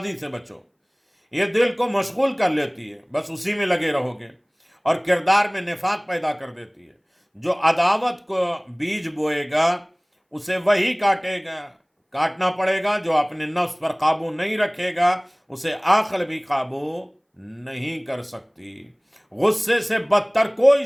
سے بچو، یہ دل کو مشغول کر لیتی ہے، بس اسی میں لگے رہو گے، اور کردار میں نفاق پیدا کر دیتی ہے۔ جو عداوت کو بیج بوئے گا اسے وہی کاٹنا پڑے گا، جو اپنے نفس پر قابو نہیں رکھے گا اسے عقل بھی قابو نہیں کر سکتی۔ غصے سے بدتر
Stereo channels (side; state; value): both; identical; correlation 1.00